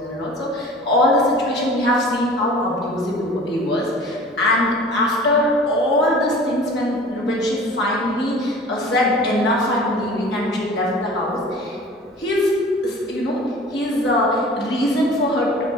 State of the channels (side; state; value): both; normal; correlation 0.43